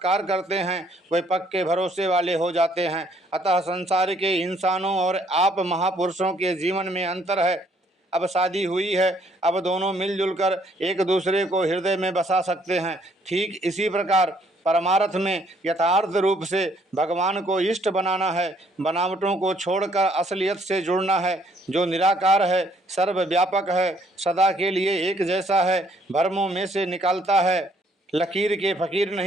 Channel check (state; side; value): normal; both; correlation 0.65